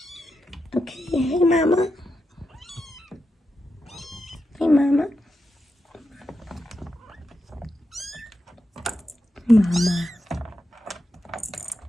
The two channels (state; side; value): normal; both; correlation 0.87